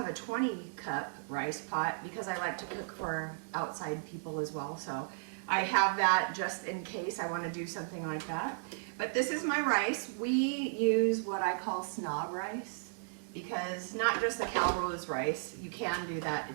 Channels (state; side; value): silent; left; digital silence